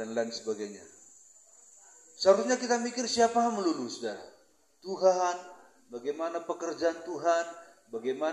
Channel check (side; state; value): both; identical; correlation 1.00